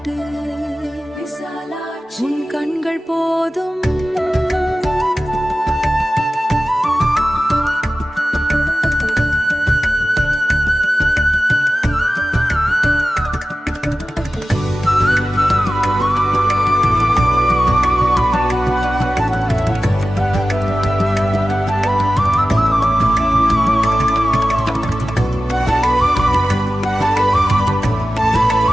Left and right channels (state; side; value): normal; both; correlation 0.94